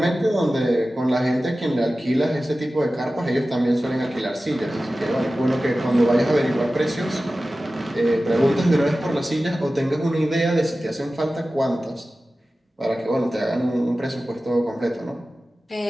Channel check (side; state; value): both; normal; correlation 0.95